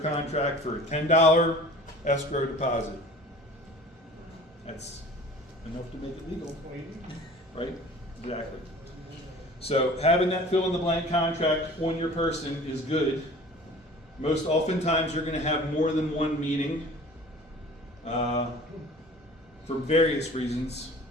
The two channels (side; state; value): both; normal; correlation 0.44